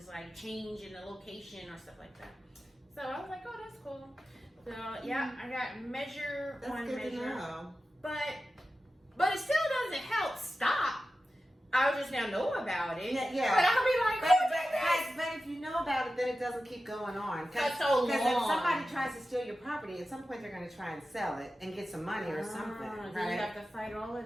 like change in the location or stuff like that. So I was like, oh, that's cool. So yeah, I got Measure That's on good Measure. to know. But it still doesn't help stop. I just now know about it. Yeah. But I'll be like, who did this? But if you know about it, then it doesn't keep going on. That's so long. Because if somebody tries to steal your property, at some point they're going to try and sell it and get some money or something. Then Right? you have to fight all of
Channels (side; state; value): both; normal; correlation 0.93